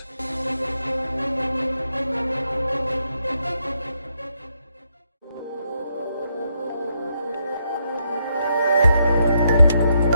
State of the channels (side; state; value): both; inverted; correlation -0.79